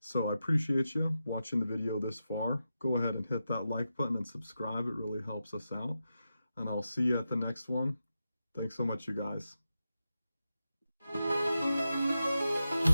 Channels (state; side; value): inverted; both; correlation -0.89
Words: I appreciate you watching the video this far. Go ahead and hit that like button and subscribe. It really helps us out. And I'll see you at the next one. Thanks so much, you guys. In